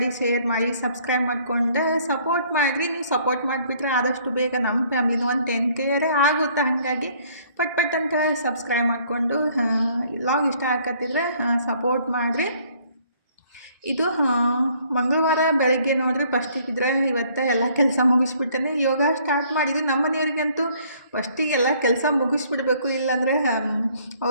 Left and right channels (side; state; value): both; inverted; correlation -0.61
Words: ಶೇರ್ ಮಾಡಿ, ಸಬ್ಸ್ಕ್ರೈಬ್ ಮಾಡ್ಕೊಂಡು ಸಪೋರ್ಟ್ ಮಾಡಿರಿ. ನೀವು ಸಪೋರ್ಟ್ ಮಾಡಿಬಿಟ್ರೆ ಆದಷ್ಟು ಬೇಗ ನಮ್ಮ ಫ್ಯಾಮಿಲಿನೂ ಒಂದು 10K ಆಗುತ್ತೆ. ಹಾಗಾಗಿ ಪಟ್ ಅಂತ ಸಬ್ಸ್ಕ್ರೈಬ್ ಮಾಡಿಕೊಂಡು ಲಾಗ್ ಇಷ್ಟ ಆಗತ್ತಿದ್ರೆ ಸಪೋರ್ಟ್ ಮಾಡಿರಿ. ಇದು ಮಂಗಳವಾರ ಬೆಳಗ್ಗೆ ನೋಡ್ರಿ ಫಸ್ಟಿಗಿದ್ರೆ ಇವತ್ತು ಎಲ್ಲ ಕೆಲಸ ಮುಗಿಸ್ಬಿಟ್ಟೇನೆ ಯೋಗ ಸ್ಟಾರ್ಟ್ ಮಾಡಿದ್ವಿ. ನಮ್ಮ ಮನೆಯವ್ರಿಗಂತೂ ಫಸ್ಟಿಗೆ ಎಲ್ಲ ಕೆಲಸ ಮುಗಿಸ್ಬಿಡ್ಬೇಕು, ಇಲ್ಲಾಂದರೆ